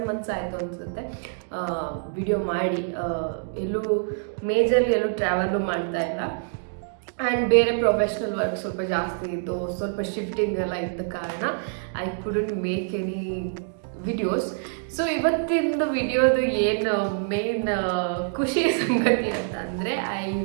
ಮಂತ್ಸ್ ಆಯಿತು ಅನಿಸುತ್ತೆ ವಿಡಿಯೋ ಮಾಡಿ. ಎಲ್ಲೂ ಟ್ರಾವೆಲು ಮಾಡ್ತಾ ಇಲ್ಲ. ಆ್ಯಂಡ್ ಬೇರೆ ಪ್ರೊಫೆಷ್ನಲ್ ವರ್ಕ್ ಸ್ವಲ್ಪ ಜಾಸ್ತಿ ಇತ್ತು, ಸ್ವಲ್ಪ ಶಿಫ್ಟಿಂಗ್ ಎಲ್ಲ ಇದ್ದ ಕಾರಣ I couldn't make any videos. So ಇವತ್ತಿನ ವಿಡಿಯೋದು ಏನು ಮೇನ್ ಖುಷಿ ಸಂಗತಿ ಅಂತ ಅಂದರೆ I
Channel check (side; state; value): left; silent; digital silence